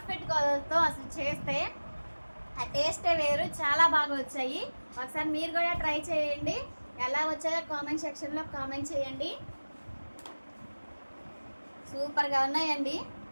కొలతలతో అసలు చేస్తే ఆ టేస్టే వేరు. చాలా బాగా వచ్చాయి. ఒకసారి మీరు కూడా ట్రై చేయండి. ఎలా వచ్చాయో కామెంట్ సెక్షన్లో కామెంట్ చేయండి. సూపర్గా ఉన్నాయండి.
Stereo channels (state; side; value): inverted; both; correlation -1.00